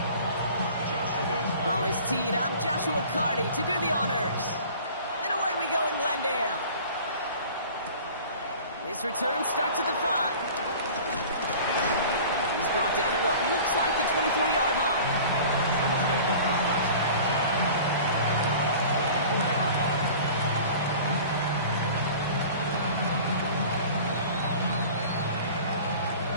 Ball is teed up. Joshua Carty to do the honors. And away we go in Glendale. This return starts at the 5. He's brought down at what looks like the 24-yard line.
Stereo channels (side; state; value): both; inverted; correlation -0.43